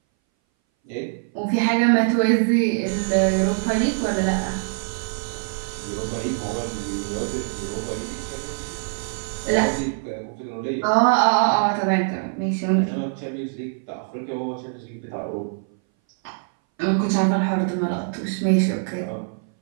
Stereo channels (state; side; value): silent; left; 60 dB below the other